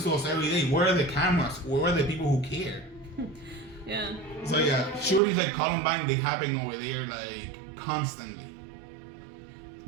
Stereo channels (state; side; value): drops out; left; at 5.2 s